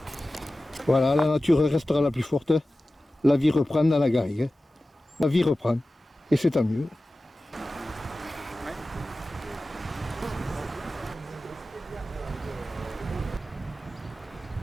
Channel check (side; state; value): both; normal; correlation 0.95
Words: Voilà, la nature restera la plus forte. La vie reprend dans la garrigue. La vie reprend et c'est tant mieux.